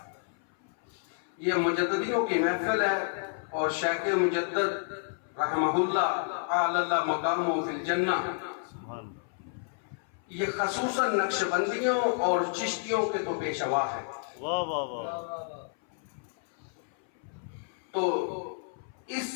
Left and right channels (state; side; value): silent; right; 58 dB below the other